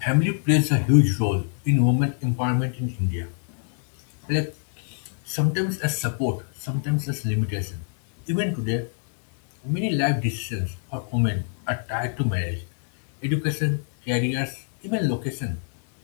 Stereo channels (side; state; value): right; silent; 57 dB below the other